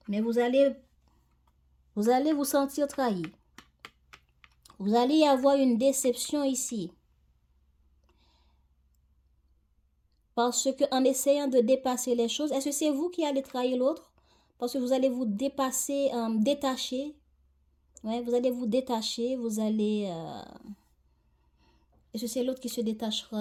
Mais vous allez vous sentir trahi. Vous allez y avoir une déception ici. Parce qu'en essayant de dépasser les choses, est-ce que c'est vous qui allez trahir l'autre? Parce que vous allez vous détacher. Ouais, vous allez vous détacher, vous allez... Est-ce que c'est l'autre qui se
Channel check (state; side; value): identical; both; correlation 1.00